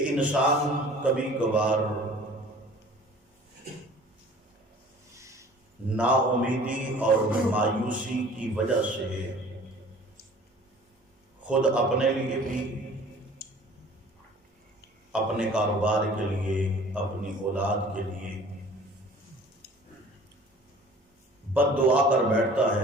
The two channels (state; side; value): normal; both; correlation 0.48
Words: انسان کبھی کبھار نا امیدی اور مایوسی کی وجہ سے خود اپنے لیے بھی، اپنے کاروبار کے لیے، اپنی اولاد کے لیے بد دعا کر بیٹھتا